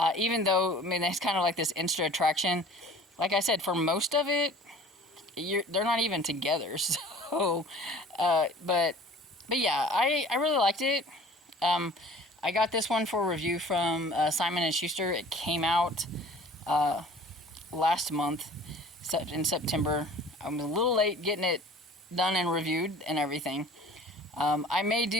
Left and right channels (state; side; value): normal; both; correlation 0.47